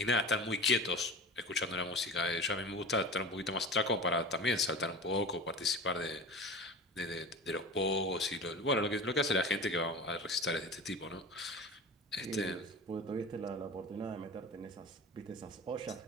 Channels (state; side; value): normal; both; correlation 0.33